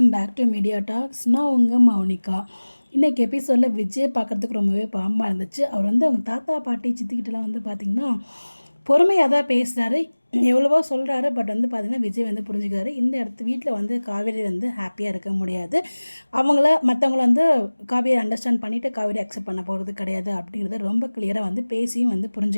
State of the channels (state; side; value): inverted; both; correlation -1.00